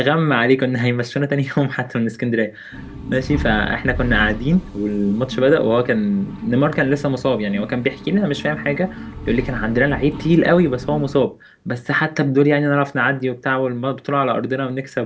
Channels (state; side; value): identical; both; correlation 1.00